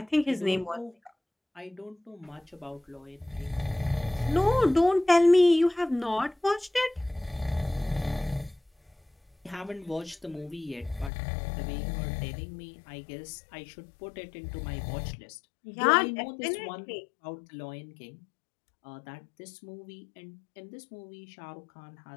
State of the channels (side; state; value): right; drops out; at 11.1 s